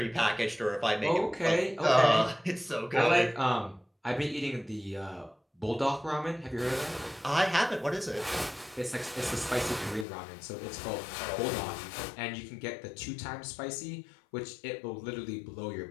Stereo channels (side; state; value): right; drops out; at 10.1 s